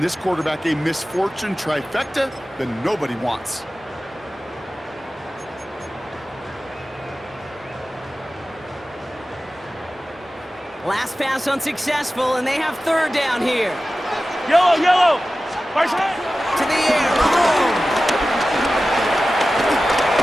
this quarterback a misfortune trifecta that nobody wants. Last pass unsuccessful, and they have 3rd down here. Yellow, yellow. To the air, Mahomes.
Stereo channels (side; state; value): both; normal; correlation 0.95